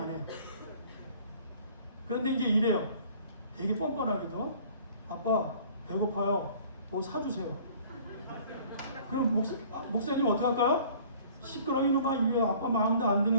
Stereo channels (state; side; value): inverted; both; correlation -0.51